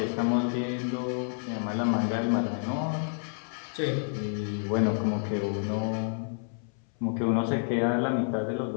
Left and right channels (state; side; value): silent; right; 58 dB below the other